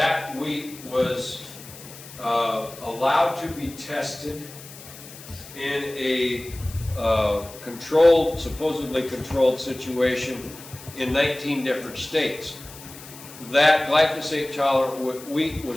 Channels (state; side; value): noise; left; hiss, 17 dB below the sound